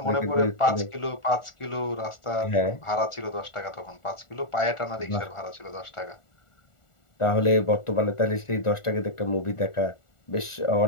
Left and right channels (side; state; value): right; late; 1.4 ms